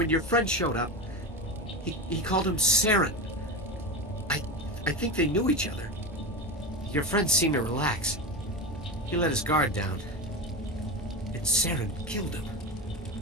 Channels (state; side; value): noise; right; hum, 20 dB below the sound